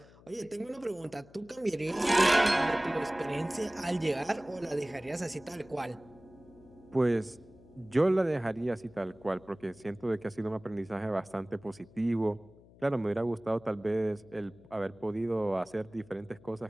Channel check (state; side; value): noise; left; hum, 24 dB below the sound